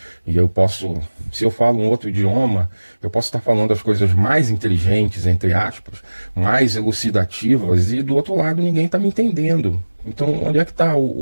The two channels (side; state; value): both; inverted; correlation -1.00